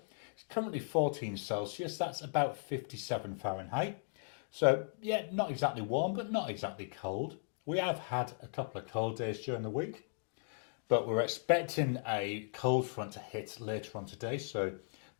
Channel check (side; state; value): right; silent; digital silence